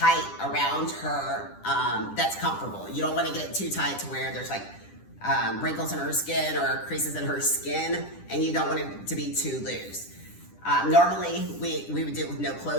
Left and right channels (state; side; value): late; right; 10 ms